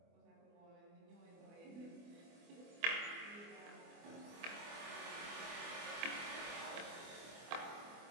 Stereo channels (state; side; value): late; left; 24 ms